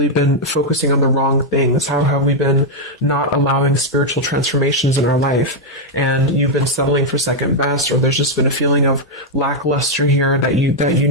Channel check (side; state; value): both; normal; correlation -0.01